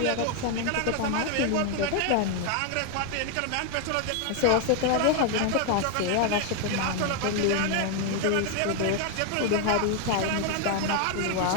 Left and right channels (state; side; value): different; both; correlation 0.01